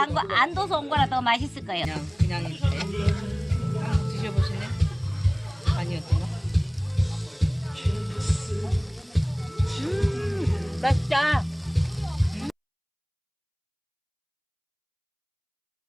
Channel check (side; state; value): both; identical; correlation 1.00